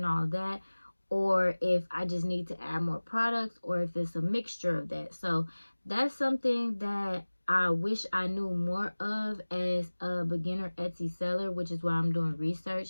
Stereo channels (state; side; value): inverted; both; correlation -1.00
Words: all that, or if I just need to add more products, or if it's a mixture of that. So that's something that I wish I knew more of as a beginner Etsy seller, which is why I'm doing